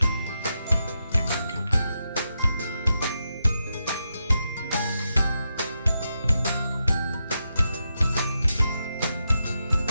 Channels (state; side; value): inverted; both; correlation -0.86